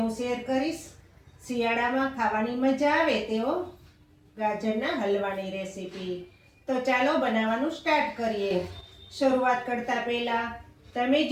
હું શેર કરીશ શિયાળામાં ખાવાની મજા આવે તેવો ગાજરના હલવાની રેસીપી. તો ચાલો બનાવવાનું સ્ટાર્ટ કરીએ. શરૂઆત કરતા પહેલા તમે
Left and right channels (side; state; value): both; identical; correlation 1.00